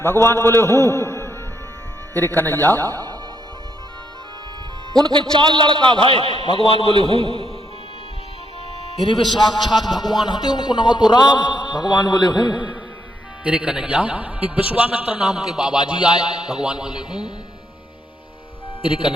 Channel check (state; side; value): normal; both; correlation 0.76